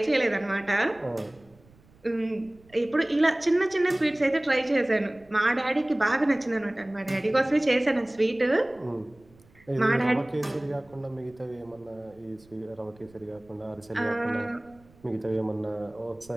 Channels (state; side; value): noise; right; rumble, 28 dB below the sound